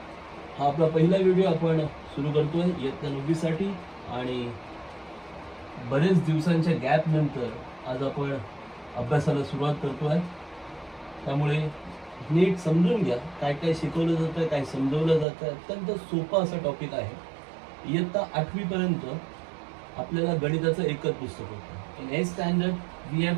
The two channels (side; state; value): left; drops out; at 15.2 s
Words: हा आपला पहिला व्हिडिओ आपण सुरू करतोय इयत्ता 9वी साठी आणि बरेच दिवसांच्या गॅप नंतर आज आपण अभ्यासाला सुरुवात करतोय. त्यामुळे नीट समजून घ्या काय काय शिकवलं जातं, काय समजवलं जातं. अत्यंत सोपा असा टॉपिक आहे. इयत्ता 8वी पर्यंत आपल्याला गणिताचं एकच पुस्तक होतं. In 8th standard we